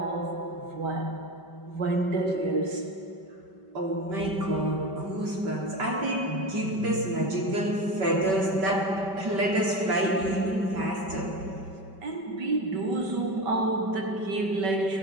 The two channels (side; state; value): left; late; 5.2 ms